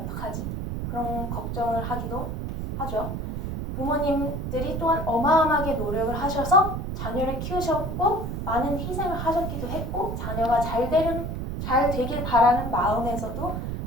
그런 걱정을 하기도 하죠. 부모님들이 또한 어마어마하게 노력을 하셔서 자녀를 키우셨고 많은 희생을 하셨기도 했고 자녀가 잘 되길 바라는 마음에서도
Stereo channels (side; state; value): right; noise; rumble, 4 dB below the sound